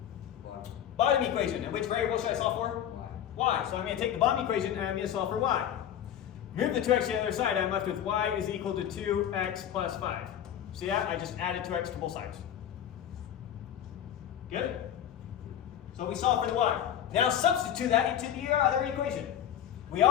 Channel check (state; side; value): quieter; right; 10.2 dB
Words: Bottom equation. And which variable should I solve for? Y. So I'm going to take the bottom equation and I'm going to solve for y. Move the 2x to the other side, I'm left with y is equal to 2x plus 5. See that? I just added 2x to both sides. Good? So we solve for the y. Now substitute that into the other equation. We